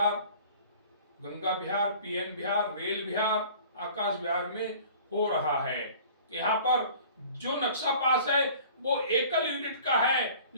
गंगा विहार, पीएन विहार, रेल विहार, आकाश विहार में हो रहा है। यहाँ पर जो नक्शा पास है वो एकल यूनिट का है,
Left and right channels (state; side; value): inverted; both; correlation -0.47